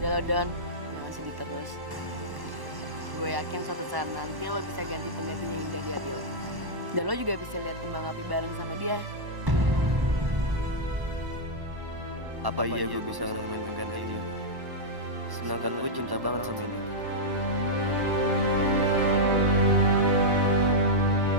Udah lo Don, jangan sedih terus. Gue yakin suatu saat nanti lo bisa ganti penggantinya Indah di hati lo. Dan lo juga bisa lihat kembang api bareng sama dia. Apa iya gue bisa nemuin pengganti ini? Sedangkan gue cinta banget sama ini.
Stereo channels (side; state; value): left; late; 1.1 ms